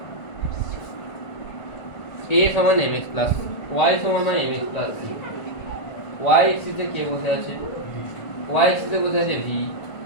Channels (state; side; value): late; right; 1.6 ms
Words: a সমান mx প্লাস y সমান mx plus c y axis এ কে বসে আছে y axis এ বসে আছে v